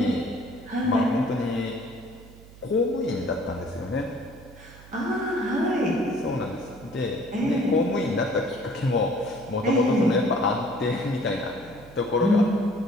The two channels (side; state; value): right; noise; hum, 20 dB below the sound